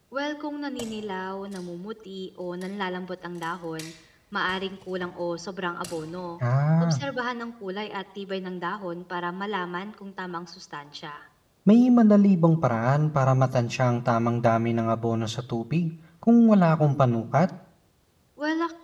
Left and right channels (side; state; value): both; identical; correlation 1.00